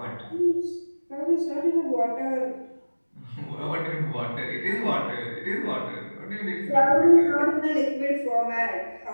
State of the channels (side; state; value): both; inverted; correlation -1.00